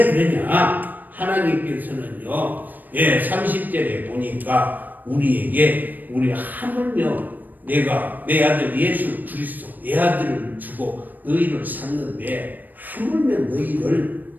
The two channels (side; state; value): left; late; 0.087 ms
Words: 그러냐? 하나님께서는요, 30절에 보니까 우리에게 하물며 내가 내 아들 예수 그리스도 내 아들을 주고 너희를 샀는데 하물며 너희를